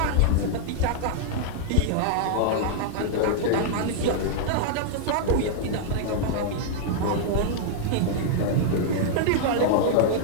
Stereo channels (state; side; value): different; both; correlation -0.01